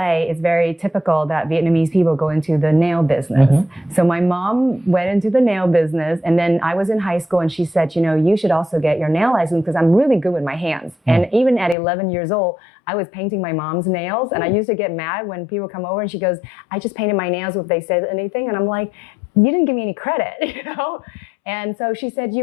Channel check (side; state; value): right; drops out; at 11.8 s